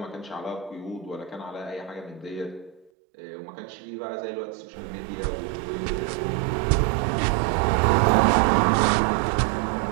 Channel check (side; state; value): left; drops out; at 2.9 s